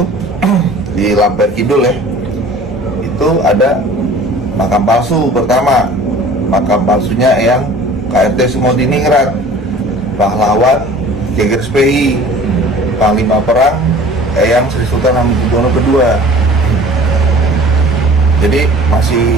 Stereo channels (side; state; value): both; normal; correlation 0.46